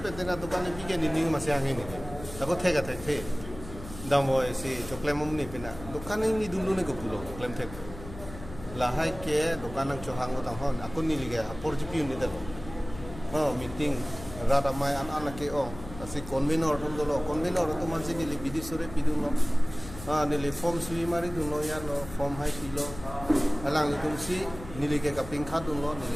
pe dena dukan ni bige ni masih angin ni ako thega the damo si choklem ni pina dukan ni dulu ni ko pulo choklem the lahai ke dukan ang chohang ko tang hon ako ni liga porjipi ni dalo meeting rata mai anak ke asi convenor tum dolo convenor to mansi ni li bidisore piduno ni li form sui mari duno ya no form hai pilo alang li tum si ni li ke kaping khat duno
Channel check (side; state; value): left; noise; hum, 14 dB below the sound